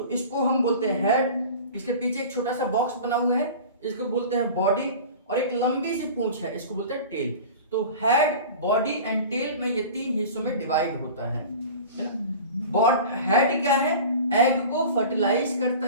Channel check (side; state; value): both; inverted; correlation -0.37